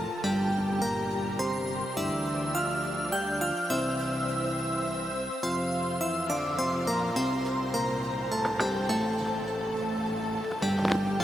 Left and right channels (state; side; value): normal; both; correlation 0.87